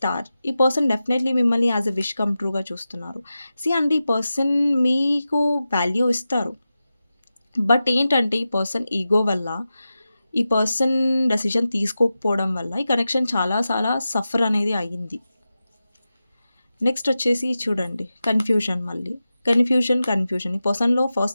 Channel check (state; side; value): inverted; both; correlation -0.93